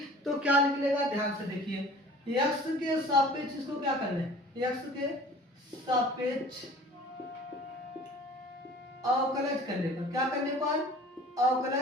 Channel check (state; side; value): normal; both; correlation 0.46